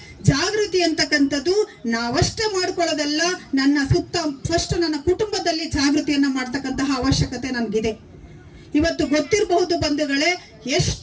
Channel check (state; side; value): identical; both; correlation 1.00